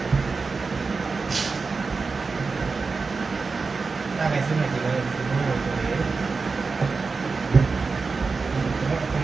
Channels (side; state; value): left; quieter; 4.4 dB